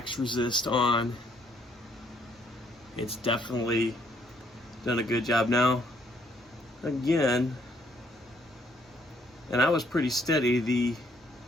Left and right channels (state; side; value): normal; both; correlation 0.68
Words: resist on. It's definitely done a good job. Now, again, and I was pretty steady, the